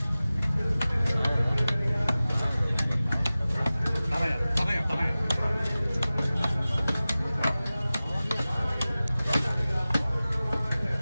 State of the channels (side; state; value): both; inverted; correlation -0.97